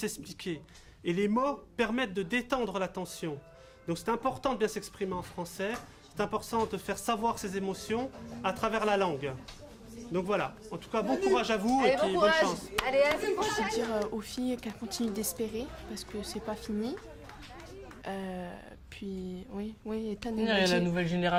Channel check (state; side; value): identical; both; correlation 1.00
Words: Et les mots permettent de détendre la tension. Donc c'est important de bien s'exprimer en français, c'est important de faire savoir ses émotions à travers la langue. Donc voilà, en tout cas, bon courage à vous et puis bonne chance. Allez, à la Je vais dire aux filles qu'elles continuent d'espérer parce que c'est pas fini. Puis, oui, Ethan il y a la nouvelle